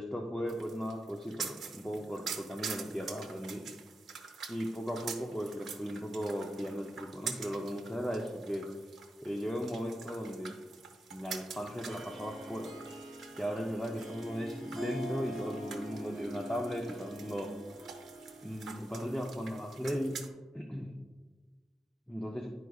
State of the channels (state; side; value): normal; both; correlation 0.88